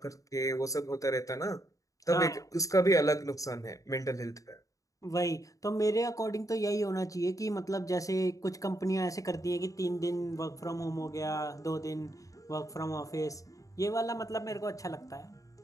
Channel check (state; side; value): late; right; 0.16 ms